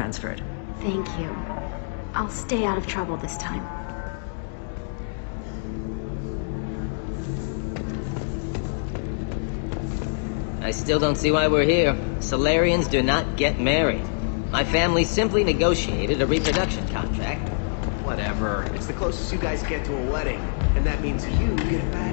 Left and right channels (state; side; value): silent; right; digital silence